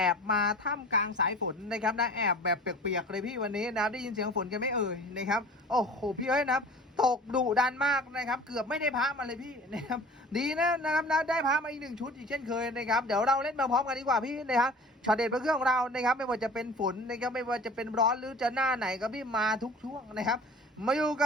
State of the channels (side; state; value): both; normal; correlation 0.43